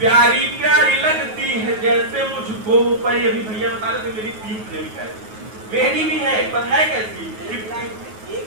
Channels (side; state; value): left; late; 9.4 ms